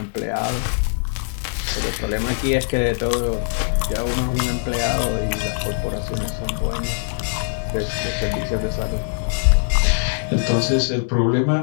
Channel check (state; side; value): silent; right; digital silence